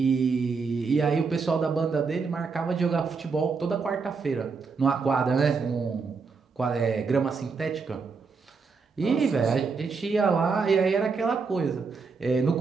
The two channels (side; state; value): left; quieter; 4.9 dB